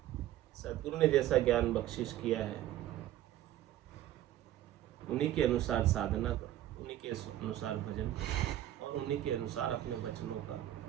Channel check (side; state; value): left; quieter; 13.2 dB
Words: सद्गुरु ने जैसा ज्ञान बख्शिश किया है उन्हीं के अनुसार साधना करो, उन्हीं के अनुसार भजन करो और उन्हीं के अनुसार अपने वचनों का